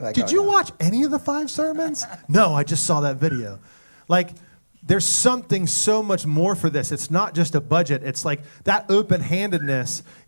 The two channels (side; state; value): both; inverted; correlation -1.00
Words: did you watch any of the 5 sermons? No, I just saw that video. Like, there's something so much more for this. It's not just a budget. It's like that open-handedness